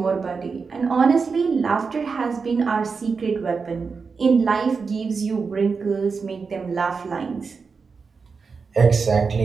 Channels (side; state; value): left; quieter; 5.0 dB